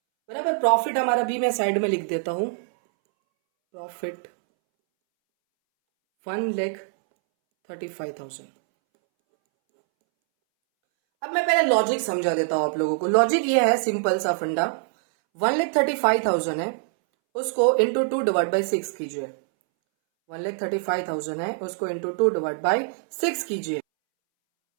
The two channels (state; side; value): silent; left; 62 dB below the other